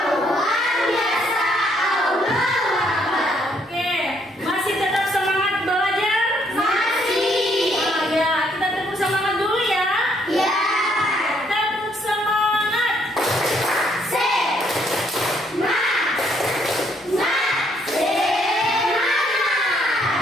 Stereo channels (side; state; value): both; normal; correlation 0.69